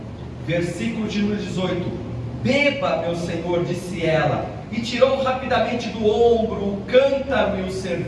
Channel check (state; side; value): identical; both; correlation 1.00